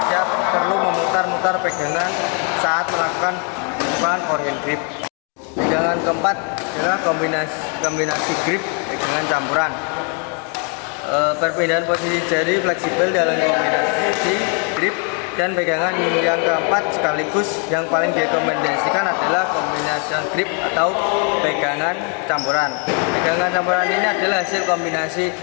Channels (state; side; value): quieter; right; 38.5 dB